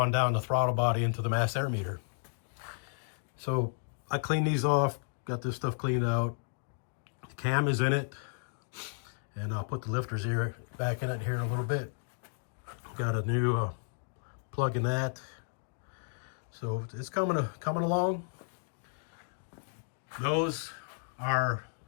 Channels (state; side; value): silent; right; digital silence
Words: down the throttle body into the mass air meter. So I cleaned these off, got this stuff cleaned out. The cam is in it, and I'll put the lifters here back in it here in a little bit. Got a new plug in that. So it's coming along. Those are